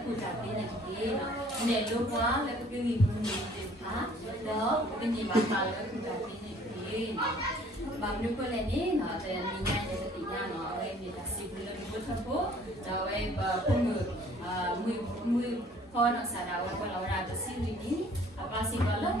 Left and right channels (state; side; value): normal; both; correlation 0.56